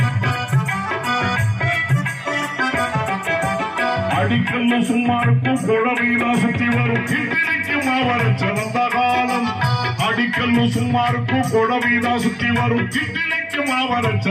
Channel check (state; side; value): identical; both; correlation 1.00